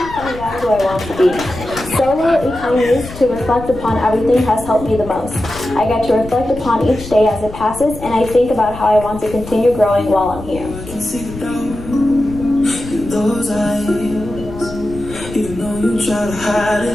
find out who I want to be. Solo, a time used to reflect upon everything, has helped me the most. I get to reflect upon each day as it passes, and I think about how I want to continue growing while I'm here. Even though you try to hide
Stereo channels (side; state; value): left; noise; rumble, 13 dB below the sound